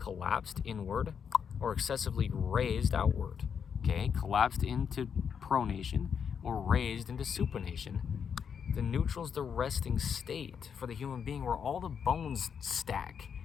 inward, or excessively raised outward. Okay, collapsed into pronation, or raised into supination. The neutral is the resting state for the human being where all the bones stack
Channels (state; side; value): quieter; right; 7.1 dB